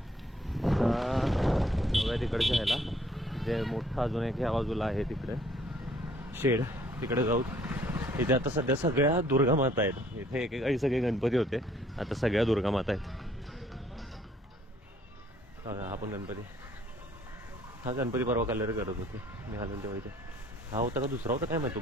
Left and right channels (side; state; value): both; normal; correlation 0.61